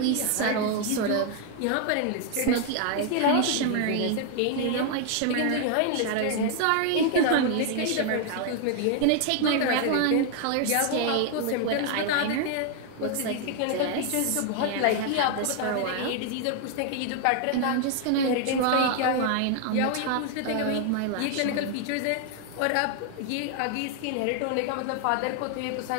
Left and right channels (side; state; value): both; different; correlation 0.00